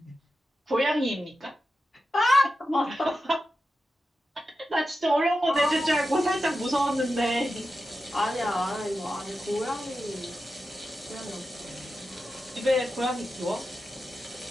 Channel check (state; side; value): normal; both; correlation 0.91